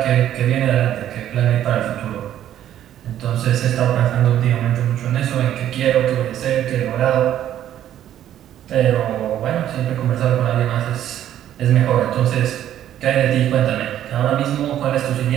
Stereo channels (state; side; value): quieter; left; 11.4 dB